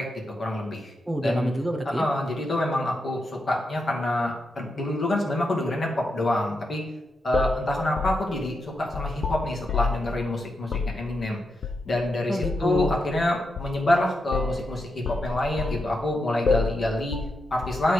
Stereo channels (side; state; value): both; normal; correlation 0.85